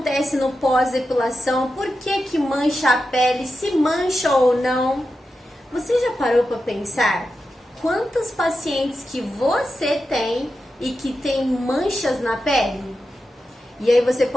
no pós-depilação? Por que mancha a pele? Se mancha ou não? Você já parou para pensar quantas pacientes que você tem e que tem manchas na pele? E aí você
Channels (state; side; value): normal; both; correlation 0.90